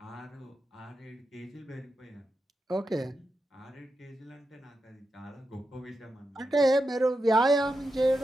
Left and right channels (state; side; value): normal; both; correlation 0.88